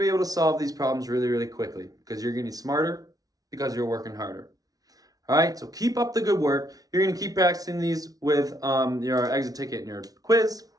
be able to solve these problems really, really quickly because you're getting smarter because you're working harder. All right, so keep up the good work. You're going to keep practicing these with your exit ticket and your quiz.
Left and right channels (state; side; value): late; left; 0.18 ms